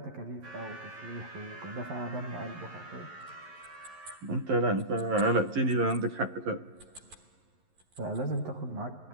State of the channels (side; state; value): left; late; 11 ms